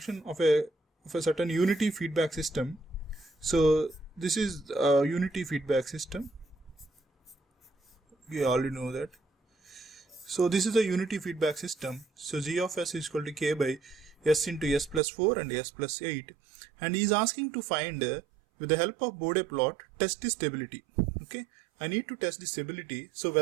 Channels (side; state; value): left; drops out; at 15.0 s